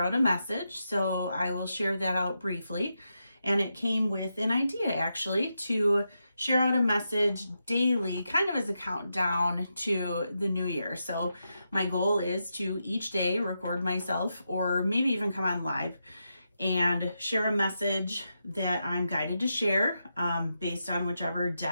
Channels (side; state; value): both; inverted; correlation -0.86